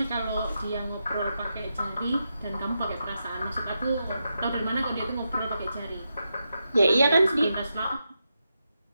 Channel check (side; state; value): both; inverted; correlation -0.86